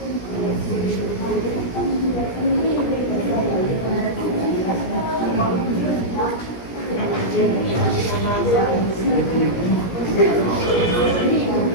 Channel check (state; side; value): late; right; 17 ms